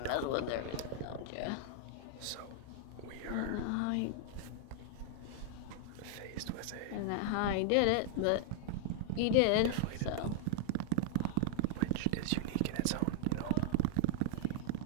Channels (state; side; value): different; both; correlation -0.01